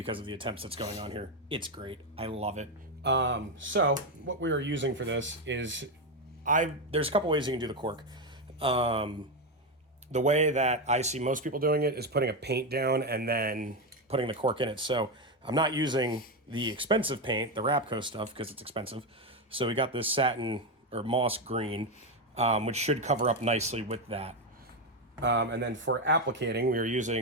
of the attempts that's going on here. It's great. I love it. So what we are using for this is, there's a couple ways you can do the cork. The way that I see most people doing it is putting a paint down and then putting the cork in it. So I'm not using the expensive paint, the Rapco stuff, because it's expensive. So we got this satin or moss green, which should cover up nicely with that. And then for applicating, we are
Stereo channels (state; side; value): normal; both; correlation 0.09